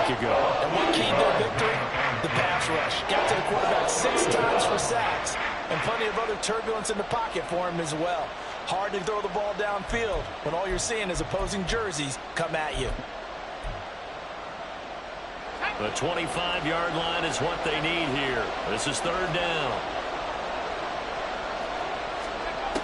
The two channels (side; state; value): both; identical; correlation 1.00